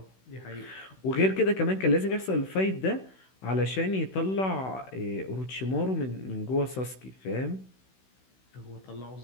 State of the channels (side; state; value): right; late; 16 ms